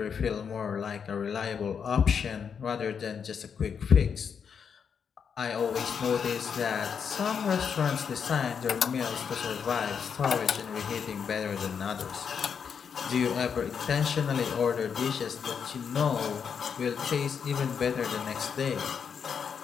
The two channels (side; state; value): right; quieter; 6.8 dB